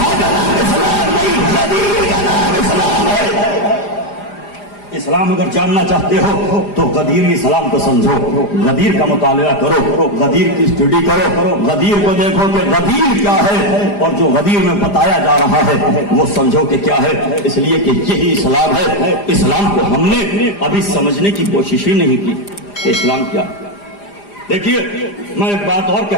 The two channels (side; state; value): right; late; 4.9 ms